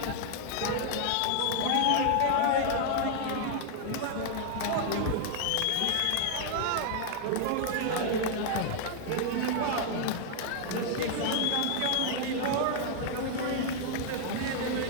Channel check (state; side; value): different; both; correlation 0.00